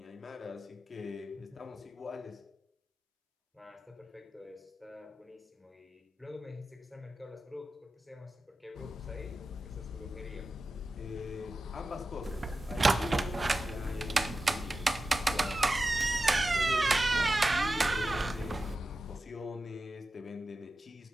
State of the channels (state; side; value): normal; both; correlation 0.92